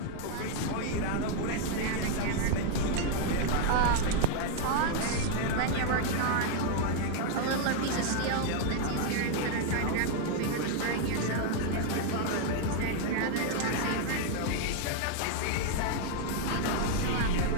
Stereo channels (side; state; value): both; different; correlation 0.00